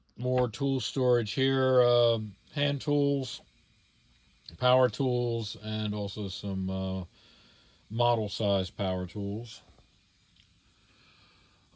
More tool storage here, hand tools, power tools, and also some model size power tools.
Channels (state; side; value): identical; both; correlation 1.00